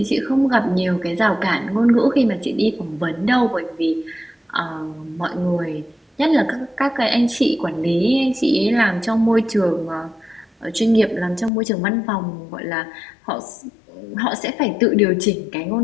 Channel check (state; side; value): drops out; right; at 11.5 s